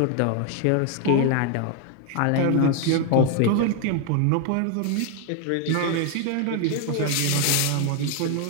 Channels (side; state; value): both; different; correlation 0.00